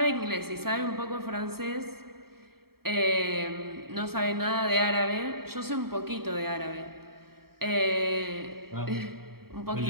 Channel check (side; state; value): left; late; 0.95 ms